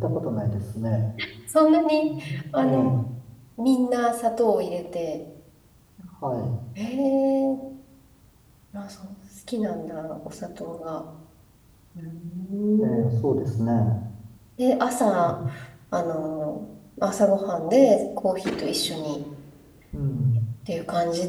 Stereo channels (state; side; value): identical; both; correlation 1.00